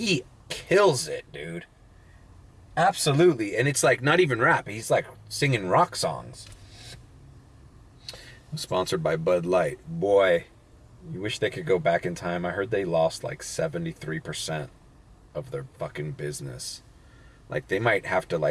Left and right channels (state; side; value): identical; both; correlation 1.00